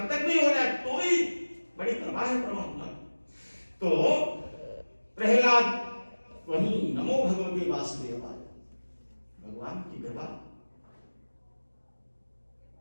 तक भी हो जाए, तो ही बड़ी कृपा है परमात्मा। तो प्रहलाद वही नमो भगवते वासुदेवाय, भगवान की कृपा,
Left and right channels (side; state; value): both; inverted; correlation -1.00